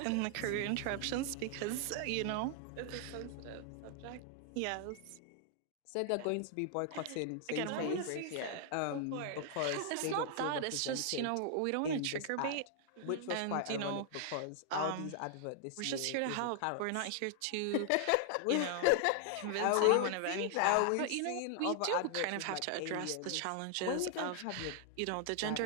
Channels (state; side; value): different; both; correlation 0.00